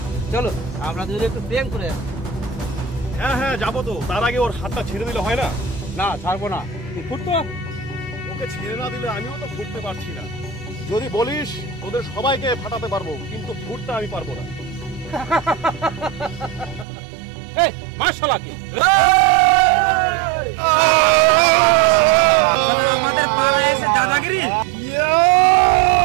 চলো আমরা দুজনে একটু প্রেম করে আসি। হ্যাঁ যাবো তো, তার আগে ওর হাতটা ছেড়ে দিলে হয় না? না ছাড়বো না, তুই ফুটতো। ওকে ছেড়ে না দিলে আমিও তো ফুটতে পারছি না। যদি বলিস ওদের সবাইকে ফাটাতে পারবো, কিন্তু ফুটতে আমি পারবো না। এই মার শালাকে। আমাদের পাড়ায় এসে দাদাগিরি।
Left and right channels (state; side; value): drops out; left; at 16.9 s